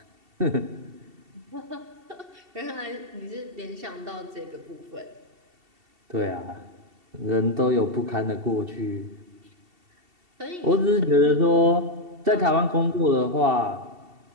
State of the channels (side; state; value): left; late; 2.7 ms